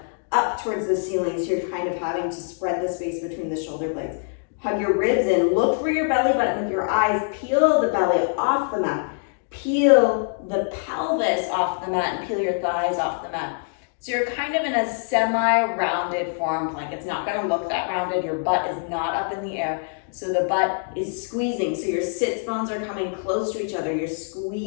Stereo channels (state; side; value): silent; right; digital silence